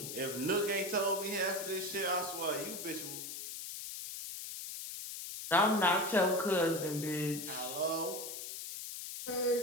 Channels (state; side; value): noise; left; hiss, 8 dB below the sound